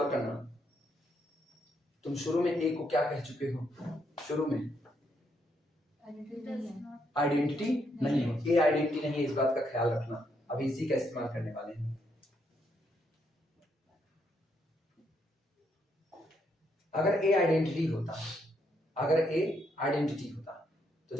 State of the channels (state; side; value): normal; both; correlation 0.76